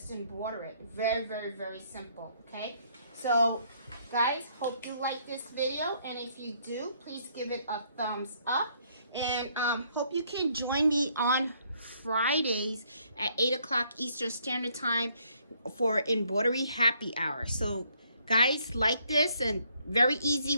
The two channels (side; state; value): both; inverted; correlation -0.68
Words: embroider it. Very, very, very simple. Okay. So, guys, hope you like this video, and if you do, please give it a thumbs up. And hope you can join me on Fridays at 8 o'clock Eastern Standard Time for Embroidery Happy Hour. So, guys, like this, and very easy